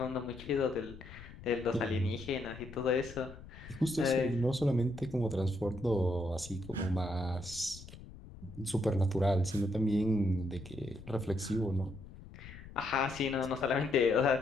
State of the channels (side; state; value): left; noise; rumble, 16 dB below the sound